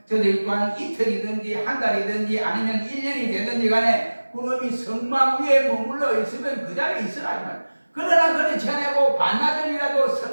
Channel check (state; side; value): inverted; both; correlation -1.00